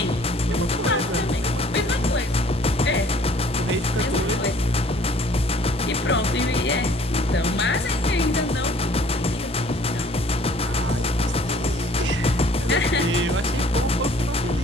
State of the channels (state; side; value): normal; both; correlation 0.56